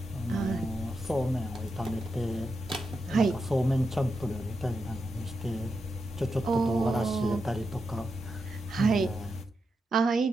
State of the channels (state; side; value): normal; both; correlation 0.86